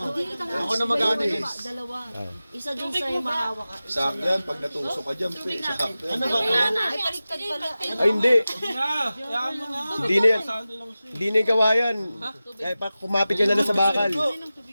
Ako na mag-ano din. Dalawa. Isa dun sa yung mahawa ka. Sakto yan, pag natusok ka dyan, pe, sakto yan. Ano ba? Ay, baliktad pala. Ay hindi, Na, kaya mo na. hindi na yan. Hindi na yung gawayan. Kaya pa kumapit ka na lang sa bakal.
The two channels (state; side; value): inverted; both; correlation -0.95